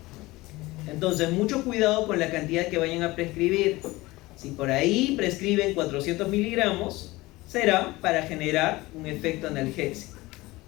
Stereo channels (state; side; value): quieter; right; 20.3 dB